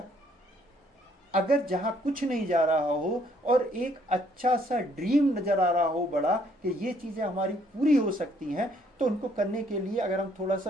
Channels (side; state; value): both; normal; correlation 0.66